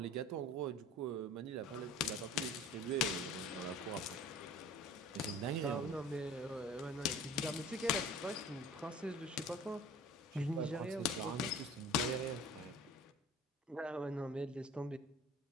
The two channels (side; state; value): both; normal; correlation 0.43